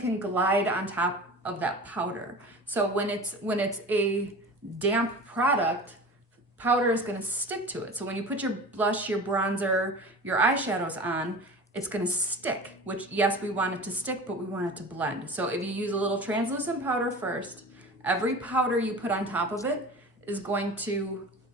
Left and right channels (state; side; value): normal; both; correlation 0.36